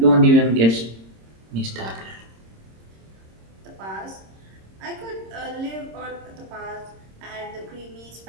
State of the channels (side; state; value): left; late; 26 ms